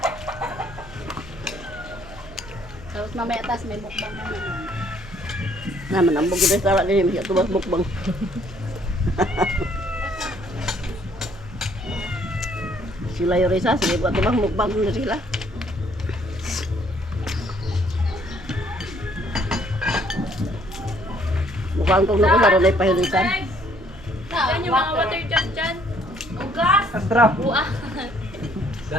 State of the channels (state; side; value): noise; left; hum, 19 dB below the sound